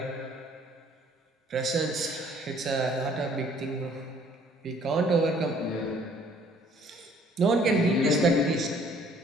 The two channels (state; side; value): normal; both; correlation 0.59